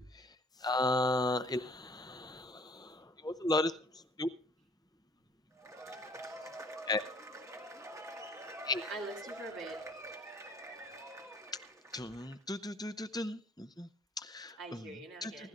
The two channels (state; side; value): normal; both; correlation 0.56